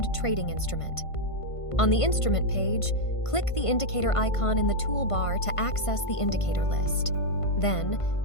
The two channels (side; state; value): right; late; 1.5 ms